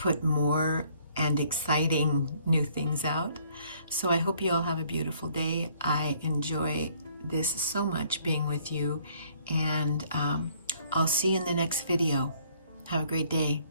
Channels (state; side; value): inverted; both; correlation -0.62